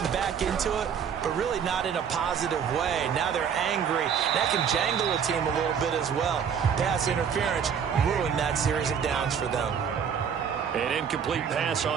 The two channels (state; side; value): quieter; left; 7.5 dB